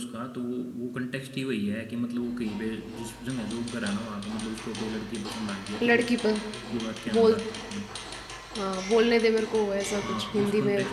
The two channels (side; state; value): both; identical; correlation 1.00